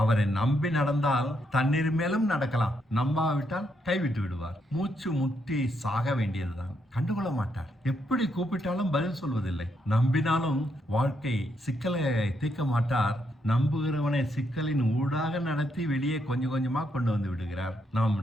அவரை நம்பி நடந்தால் தண்ணீர் மேலும் நடக்கலாம். நம்பாவிட்டால் கைவிட்டு விடுவார். மூச்சு முட்டி சாக வேண்டியதுதான். கண்டுகொள்ள மாட்டார். எப்படி கூப்பிட்டாலும் பதில் சொல்வதில்லை. நம்பினாலும் வாழ்க்கை சிக்கலை தீர்க்க மாட்டார். நம்புகிறவனை சிக்கலின் ஊடாக நடத்தி வெளியே கொஞ்சம் கொஞ்சமா கொண்டு வந்து விடுகிறார். நாம்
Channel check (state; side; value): normal; both; correlation 0.78